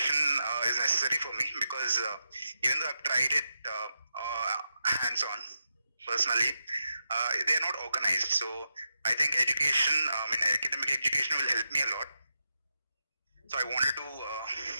is necessary for me because even though I've tried it hands-on personally, they are not organized. So I think academic education will help me a lot. So I wanted to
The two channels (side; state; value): both; inverted; correlation -0.86